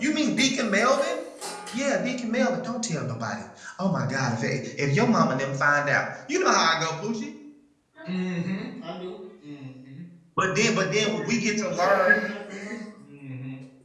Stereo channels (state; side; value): identical; both; correlation 1.00